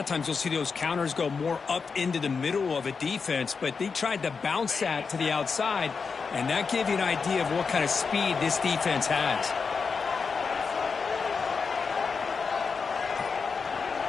times you'll see those counters go more up into the middle of a defense, but they tried to bounce that to the outside, and that gave you an idea of what kind of speed this defense has.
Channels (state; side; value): quieter; right; 5.2 dB